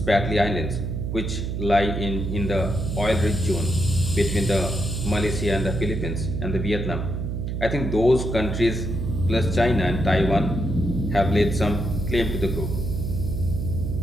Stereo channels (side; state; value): right; noise; hum, 3 dB below the sound